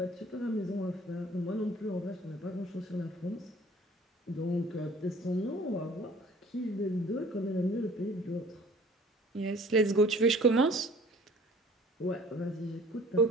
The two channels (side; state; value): both; normal; correlation 0.51